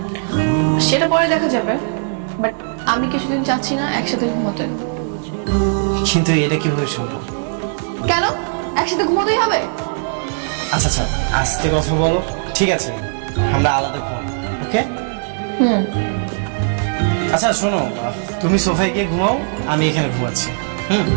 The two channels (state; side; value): silent; left; 67 dB below the other